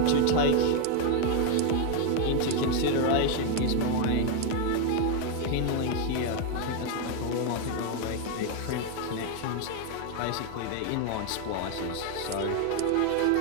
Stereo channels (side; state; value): both; different; correlation 0.01